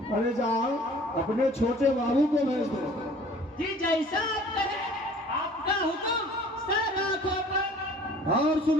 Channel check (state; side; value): normal; both; correlation 0.50